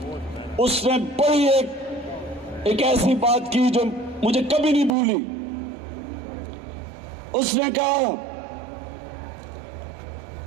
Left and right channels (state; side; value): drops out; left; at 4.9 s